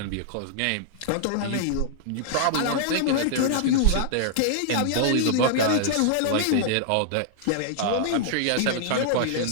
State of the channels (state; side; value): different; both; correlation -0.01